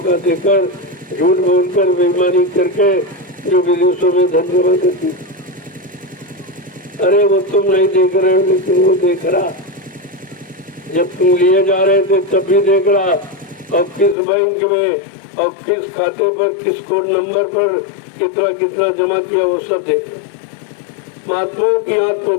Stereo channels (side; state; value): right; drops out; at 14.2 s